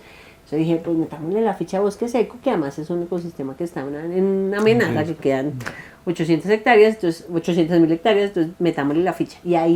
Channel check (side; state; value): both; identical; correlation 1.00